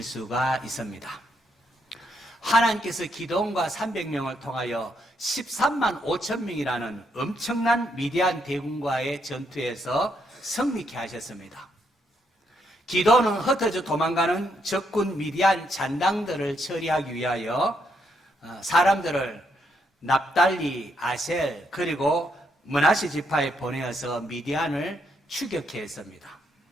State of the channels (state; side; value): normal; both; correlation 0.76